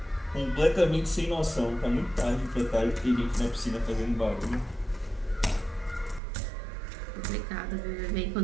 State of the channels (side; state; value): left; drops out; at 6.2 s